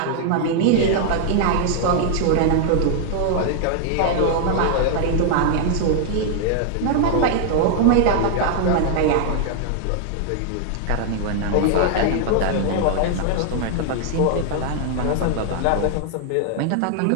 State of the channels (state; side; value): different; both; correlation 0.00